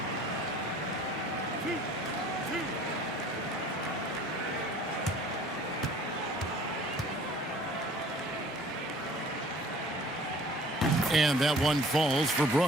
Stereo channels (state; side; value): normal; both; correlation 0.51